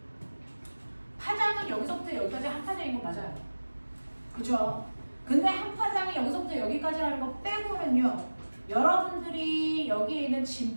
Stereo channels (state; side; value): inverted; both; correlation -1.00